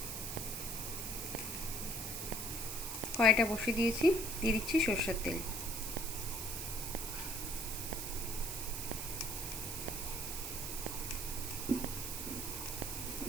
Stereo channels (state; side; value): noise; right; hiss, 4 dB below the sound